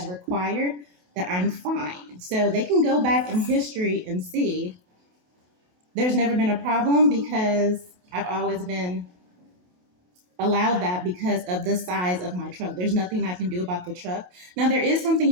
required, that I'm fine. So they can go back in history and see there's never been a problem because I've always been allowed that because of the size of my truck. There's nothing I can do about the truck. Now, there is something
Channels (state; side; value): late; left; 28 ms